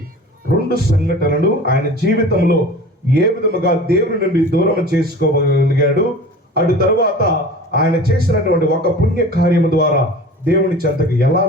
2 సంఘటనలు ఆయన జీవితంలో ఏ విధముగా దేవుని నుండి దూరం చేసుకోగలిగాడు, అటు తరువాత ఆయన చేసినటువంటి ఒక పుణ్య కార్యము ద్వారా దేవుని చెంతకు ఎలా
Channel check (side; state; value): both; normal; correlation 0.39